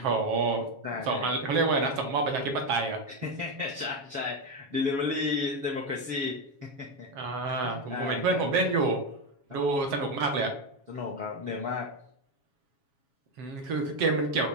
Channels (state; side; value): late; left; 7.3 ms